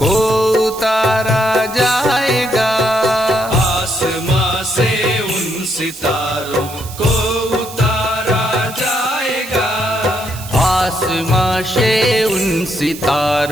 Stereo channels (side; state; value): right; noise; hiss, 14 dB below the sound